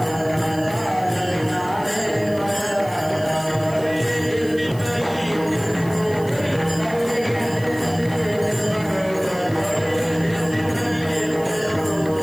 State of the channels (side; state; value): right; noise; hiss, 21 dB below the sound